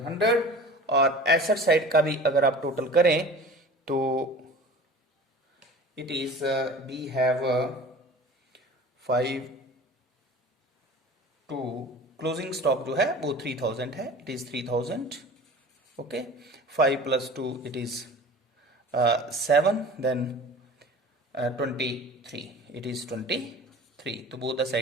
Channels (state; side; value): normal; both; correlation 0.41